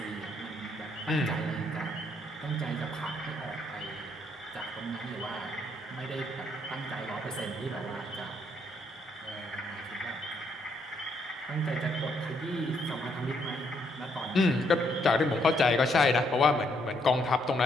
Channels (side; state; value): both; normal; correlation 0.73